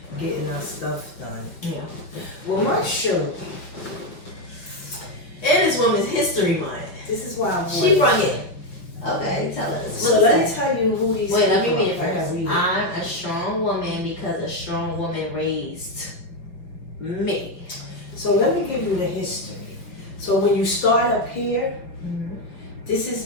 getting our stuff done. Yeah. Well, my shirt. And it's Women's History Month. This is why I wore She brought it. Okay, tell us. So let me tell you who these. Wait, let me read it I gotta first. read it. I'm a strong woman because a strong woman raised me. So let me give you the history. So when you start up here, this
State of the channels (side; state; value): right; late; 6.0 ms